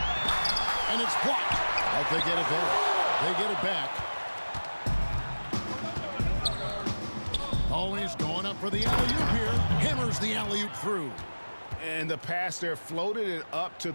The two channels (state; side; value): inverted; both; correlation -1.00